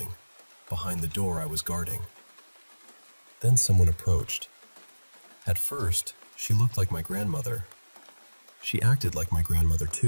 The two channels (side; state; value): both; inverted; correlation -1.00